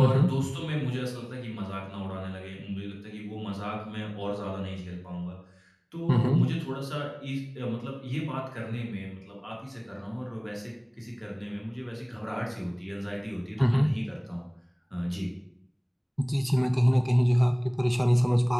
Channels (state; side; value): identical; both; correlation 1.00